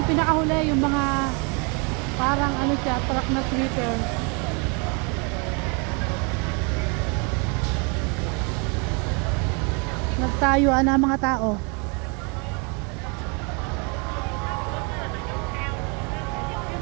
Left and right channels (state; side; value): quieter; left; 33.4 dB